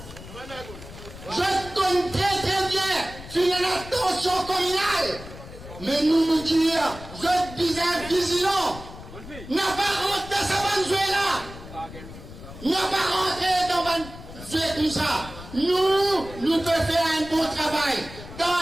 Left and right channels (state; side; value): noise; left; rumble, 15 dB below the sound